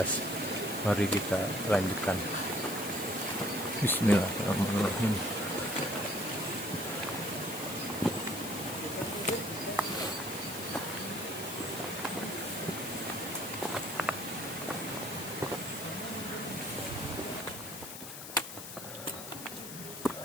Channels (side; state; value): left; noise; hiss, 10 dB below the sound